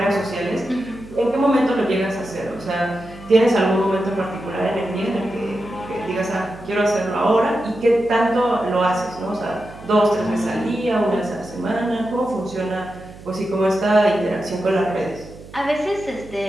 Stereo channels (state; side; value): noise; right; hum, 18 dB below the sound